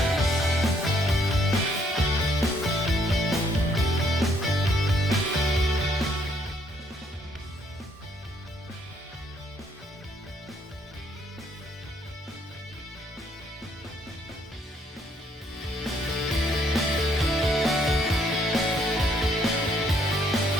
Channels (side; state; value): both; normal; correlation 0.68